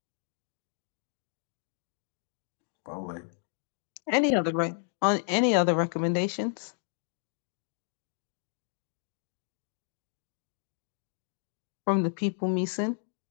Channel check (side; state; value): right; silent; 56 dB below the other